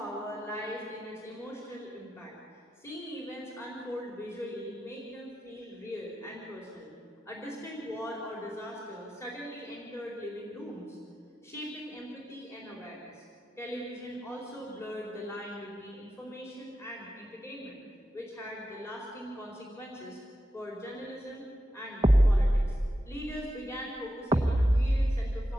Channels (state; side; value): normal; both; correlation 0.89